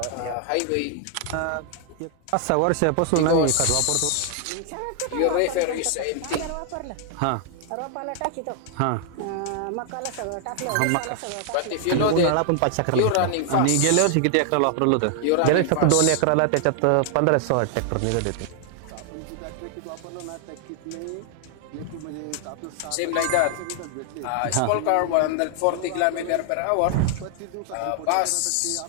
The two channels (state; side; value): different; both; correlation 0.00